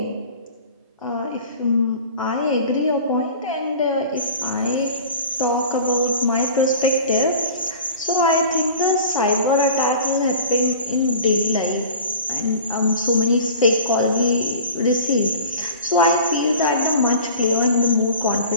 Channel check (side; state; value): both; inverted; correlation -0.41